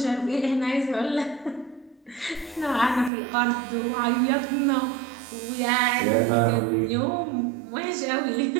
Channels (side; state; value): left; drops out; at 3.1 s